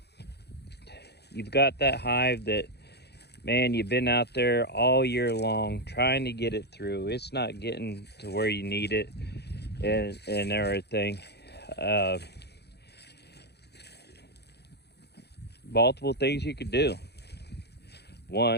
you've got that hive that, man, you've been out there all year long trying to get it through. It's not getting to where you need it and everything. Multiple things you could do.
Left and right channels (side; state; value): right; late; 0.48 ms